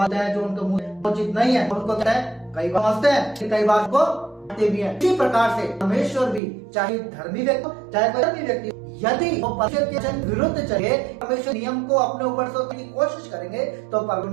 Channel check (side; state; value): left; drops out; at 6.4 s